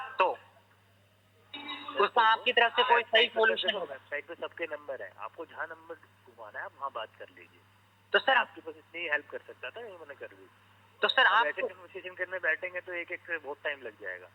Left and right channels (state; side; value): identical; both; correlation 1.00